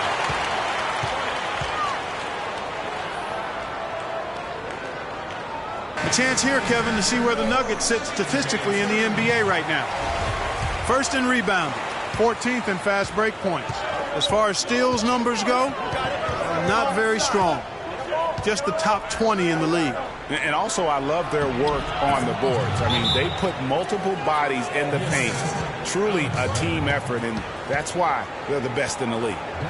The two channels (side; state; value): both; identical; correlation 1.00